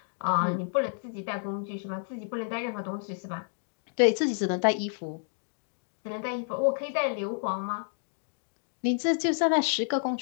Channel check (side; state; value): right; silent; digital silence